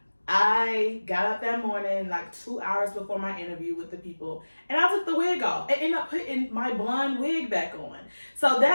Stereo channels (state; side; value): inverted; both; correlation -1.00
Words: I got up that morning, 2 hours before my interview with the people, and I took the wig off and ended up putting my blonde wig back on. So